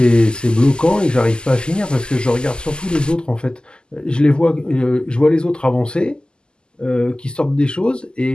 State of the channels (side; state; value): right; late; 0.047 ms